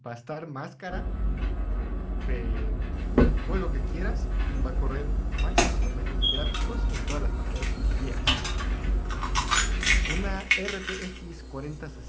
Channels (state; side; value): identical; both; correlation 1.00